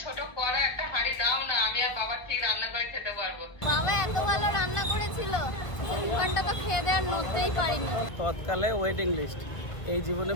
ছোট কড়া একটা হাঁড়ি দাও না, আমি আর বাবা ঠিক রান্না করে খেতে পারবো। বাবা এত ভালো রান্না করেছিল, দু ঘন্টা তো খেয়ে দেওয়ার নড়তেই পারিনি। তৎকালে ওয়েটিং লিস্ট, এই জীবনে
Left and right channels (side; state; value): right; late; 1.3 ms